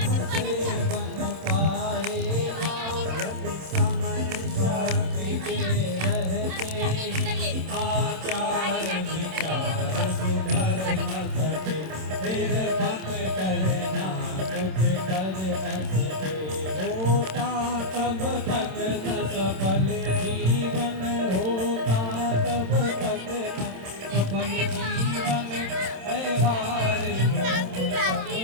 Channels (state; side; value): late; left; 27 ms